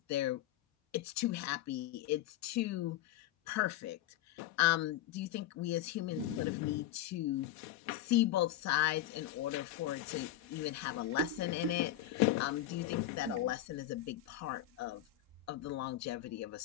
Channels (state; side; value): quieter; right; 12.6 dB